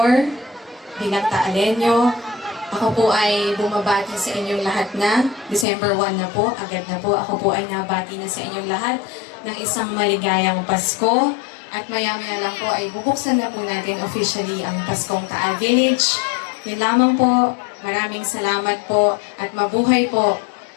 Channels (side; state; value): right; drops out; at 5.7 s